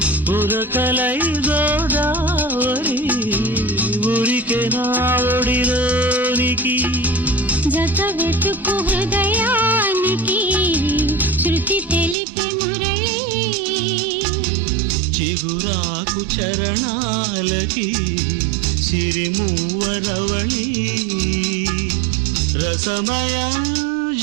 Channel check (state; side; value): drops out; left; at 12.2 s